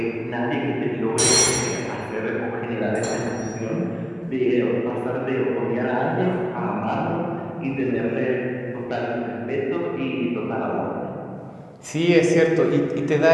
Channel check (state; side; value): identical; both; correlation 1.00